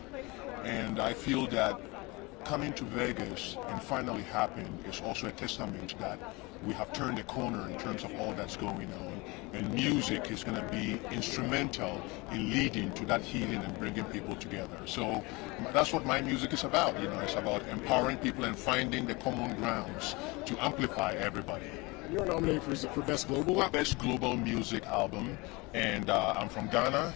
and I feel that coming to Vegas and finally happened is also a testament that we have turned the corner in terms of all that's going on, and music is going to be instrumental in leading to that healing and bringing people together. So that's what my music is about. It's about empowering people and finding the common grounds to amplify everybody. You're nominated for Best Global Album? Best Global Music Album, and I'm from Ghana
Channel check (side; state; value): right; quieter; 25.1 dB